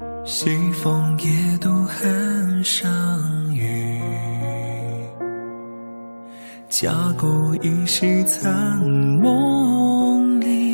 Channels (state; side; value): inverted; both; correlation -1.00